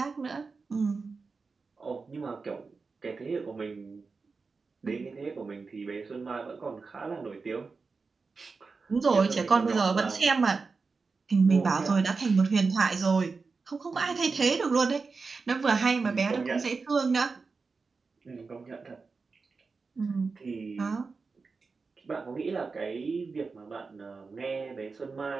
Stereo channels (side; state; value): left; quieter; 4.5 dB